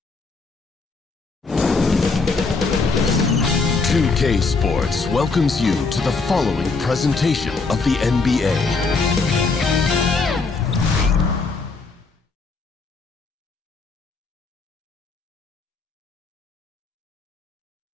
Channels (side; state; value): right; quieter; 4.1 dB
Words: 2K Sports welcomes you to the following presentation of the NBA.